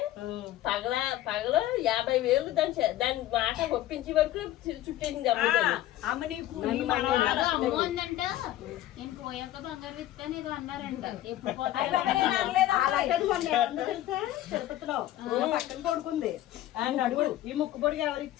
పగల 50,000 దాని మాట ఒప్పించే వరకు చుట్టేసింది. అమ్మ నీకు అమ్మ ఉందంట, నేను పోయాక బంగారు విత్తాను ఏదో అన్నారంట. ఎప్పుడు తిరుపతిలో పక్కన కొడుకుంది అడుగు ఈ ముక్కు పొడికి ఎవరు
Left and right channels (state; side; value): quieter; right; 14.0 dB